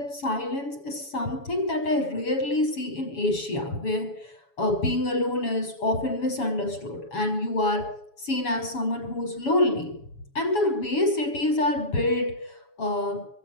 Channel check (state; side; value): late; right; 7.1 ms